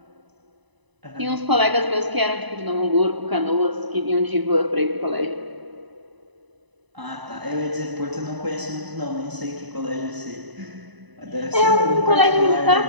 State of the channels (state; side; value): late; left; 1.0 ms